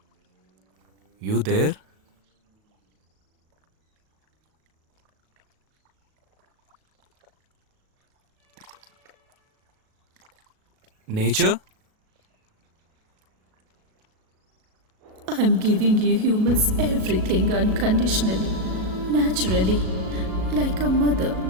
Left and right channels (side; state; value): left; late; 37 ms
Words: You there? Nature? I'm giving you humans everything unconditionally, naturally, like a mother.